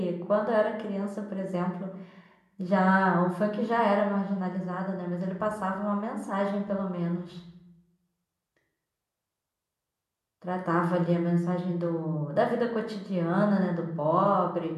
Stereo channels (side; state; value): both; identical; correlation 1.00